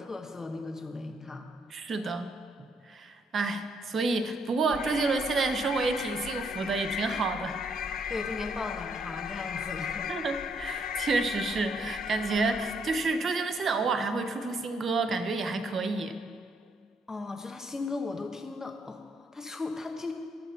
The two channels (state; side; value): normal; both; correlation 0.72